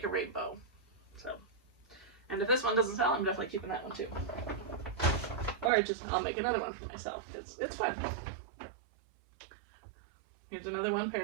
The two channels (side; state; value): left; drops out; at 5.7 s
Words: a rainbow. So, and if this one doesn't sell, I'm definitely keeping that one too. Or I'll make another one for myself. It's fun. Here's another one